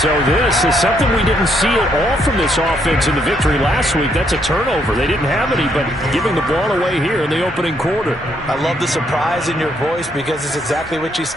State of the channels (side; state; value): both; normal; correlation 0.73